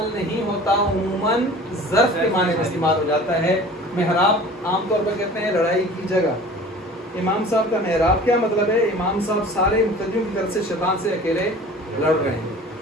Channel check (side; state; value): both; normal; correlation 0.43